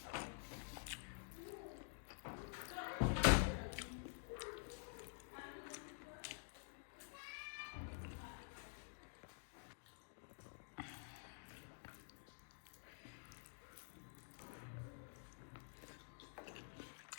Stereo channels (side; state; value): right; silent; digital silence